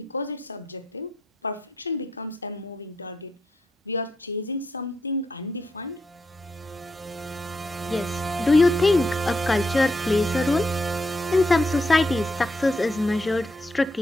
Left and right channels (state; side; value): normal; both; correlation 0.81